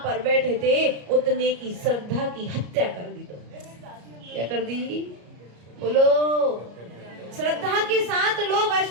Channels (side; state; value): left; late; 33 ms